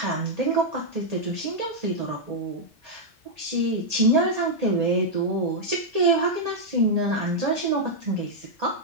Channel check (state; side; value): normal; both; correlation -0.04